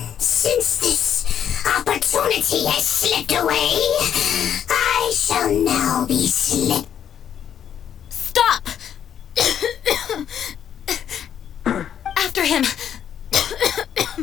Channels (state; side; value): quieter; right; 9.2 dB